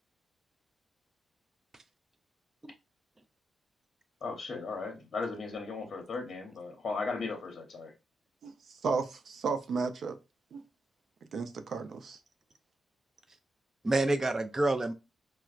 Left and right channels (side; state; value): both; normal; correlation 0.86